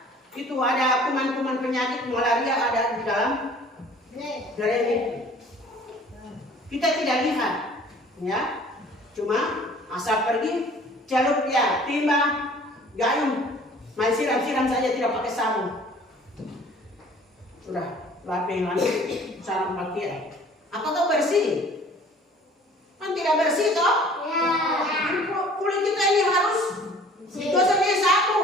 Itu ada kuman-kuman penyakit malaria ada di dalam drain itu. Kita tidak lihat, ya. Cuma asal pergi celup ya, timba, gayung, main siram-siram saja tidak pakai sabun. Sudah, lapeng lagi, sarung pakaian. Apakah bersih? Kan tidak bersih toh? Ya. Kulit kita ini harus gosoknya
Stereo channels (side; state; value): both; normal; correlation 0.51